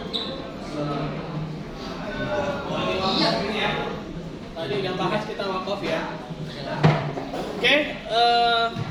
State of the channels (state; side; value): identical; both; correlation 1.00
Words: Ini ya. Tadi udah bahas kita wakaf ya. Oke,